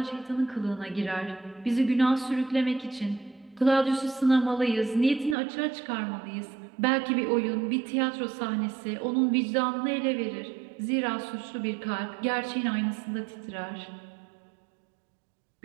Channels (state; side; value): drops out; left; at 5.4 s